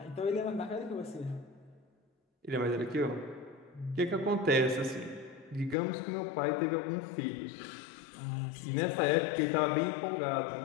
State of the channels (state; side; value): drops out; right; at 5.8 s